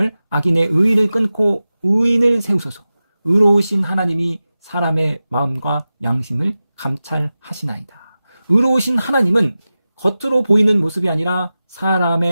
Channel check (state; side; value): inverted; both; correlation -0.95